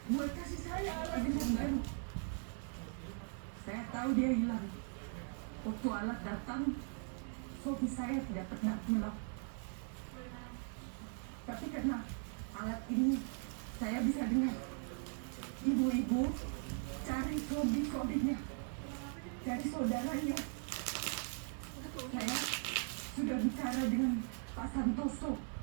buat kasih saya alat dengan baru. Saya tahu dia hilang. Waktu alat datang, suami saya tidak pernah pulang. Tapi karena alat ini, saya bisa dengar ibu-ibu cari kode-kodenya dari saudaranya. Saya sudah bicara dengan Pak Santoso.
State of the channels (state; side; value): silent; left; 51 dB below the other